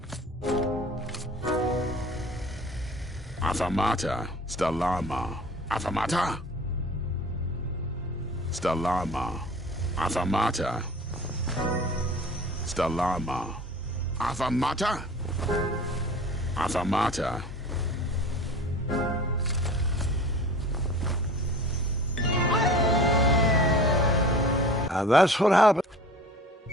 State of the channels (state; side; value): normal; both; correlation 0.42